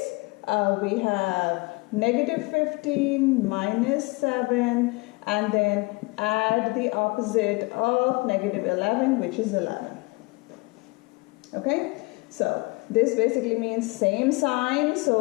we have negative 15 minus 7, and then add the opposite of negative 11, which is 11. Okay, so this basically means same sign,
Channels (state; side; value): quieter; right; 26.3 dB